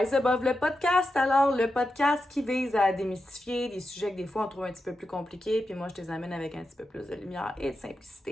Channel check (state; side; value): normal; both; correlation 0.89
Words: Above le podcast. Alors, le podcast qui vise à démystifier des sujets que des fois on trouve un petit peu plus compliqués, puis moi je les amène avec un petit peu plus de lumière et de